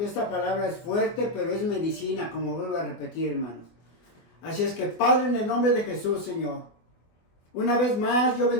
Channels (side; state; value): right; late; 24 ms